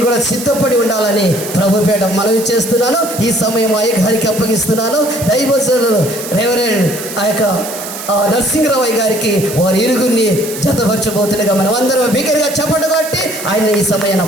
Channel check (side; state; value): right; noise; hiss, 10 dB below the sound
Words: కూడా సిద్ధపడి ఉండాలని ప్రభుపేట మనవి చేస్తున్నాను. ఈ సమయం అయ్యగారికి అప్పగిస్తున్నాను. దైవజనులు రెవరెండ్ ఆ యొక్క నరసింహరావు గారికి వారి ఇరుగురిని జతపరచబోతుండగా మనం అందరం బిగ్గరగా చప్పట్లు కొట్టి ఆయన ఈ సమయాన్ని